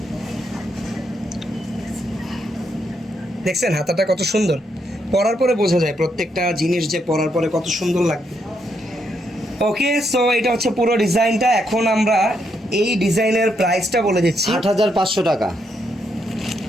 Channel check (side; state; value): both; normal; correlation 0.78